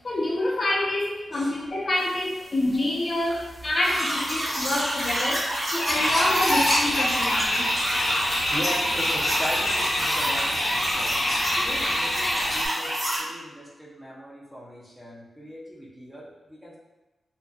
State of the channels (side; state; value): both; normal; correlation 0.90